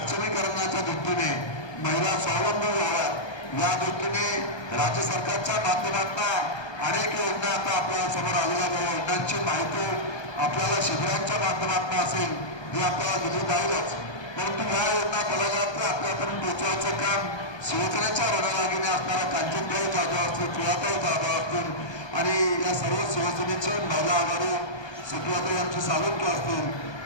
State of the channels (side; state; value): right; late; 1.2 ms